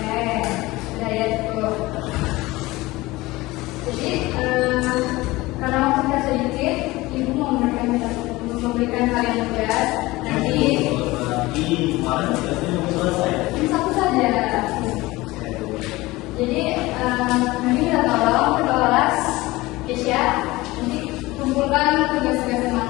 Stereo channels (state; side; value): quieter; right; 20.0 dB